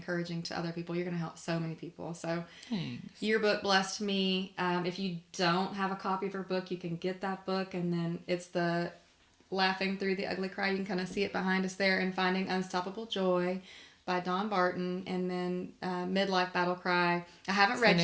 to other people. You're going to help so many people. So Thanks. your book blessed me. If you don't have a copy of her book, you can get that book. And then it's the Laughing Through the Ugly Cry. You can kind of see it behind us there. And Finding Unstoppable Joy by Dawn Barton. And then Midlife Battle Cry. I haven't read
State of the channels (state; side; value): identical; both; correlation 1.00